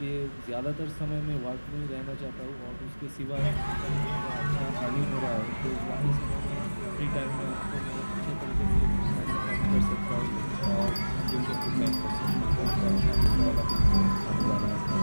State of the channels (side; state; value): both; inverted; correlation -1.00